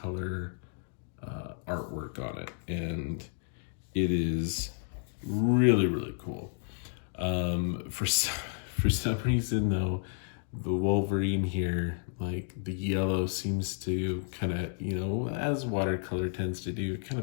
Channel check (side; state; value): right; silent; digital silence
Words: artwork on it, and it is really cool. For some reason though, the Wolverine here, like the yellow seems to kind of, as watercolor tends to do, it kind